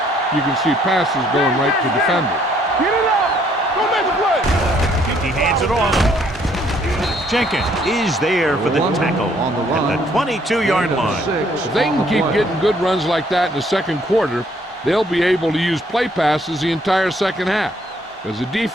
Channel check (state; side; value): normal; both; correlation 0.65